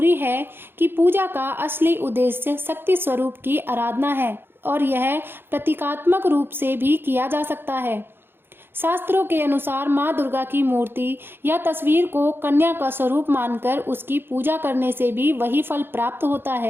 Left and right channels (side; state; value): left; late; 0.10 ms